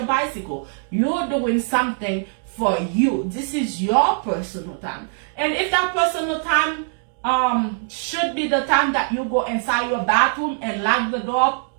bicycle. You're doing something for you. This is your personal time. And if that personal time should be the time that you go inside your bathroom and lock the door,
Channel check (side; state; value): left; silent; digital silence